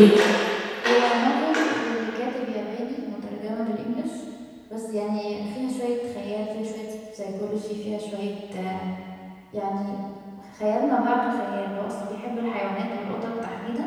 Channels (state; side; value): identical; both; correlation 1.00